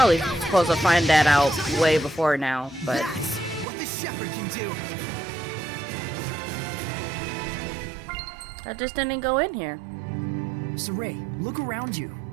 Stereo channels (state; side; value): drops out; left; at 3.7 s